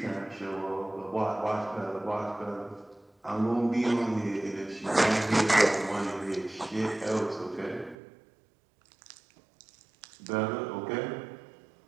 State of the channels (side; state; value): left; drops out; at 8.0 s